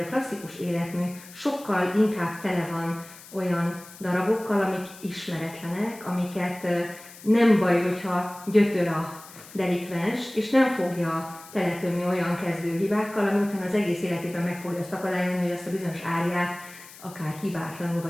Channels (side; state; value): left; noise; hiss, 19 dB below the sound